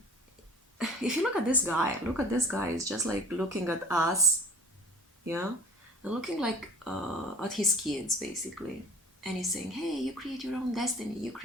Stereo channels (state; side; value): normal; both; correlation 0.45